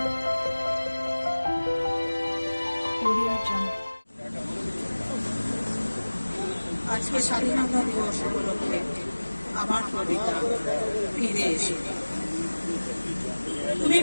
Audio Jungle. আজকে স্বাধীনতা দিবস উপলক্ষে আমার কবিতা ফিরে এসো। তুমি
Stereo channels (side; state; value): both; inverted; correlation -1.00